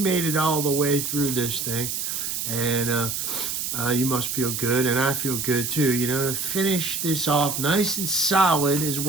it all the way through this thing. And you must feel good, and I feel good too. You know, to finish this off nice and solid is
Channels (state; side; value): noise; right; hiss, 3 dB below the sound